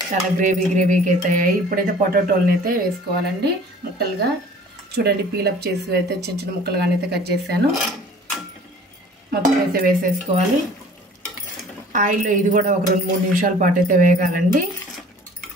చాలా గ్రేవీగా అయితే అయ్యాయి. ఇప్పుడైతే పొటాటోలను అయితే వేసుకోవాలండి ముక్కలుగా. చూడండి, పీలప్ చేసి అయితే చిన్న చిన్న ముక్కలుగానే అయితే కట్ చేశాను. మొత్తం అయితే వేసేసుకోవాలి. ఆయిల్లో ఇది కూడా ఒక 2-3 నిమిషాల పాటు అయితే వేగాలండి.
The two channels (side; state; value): both; normal; correlation 0.49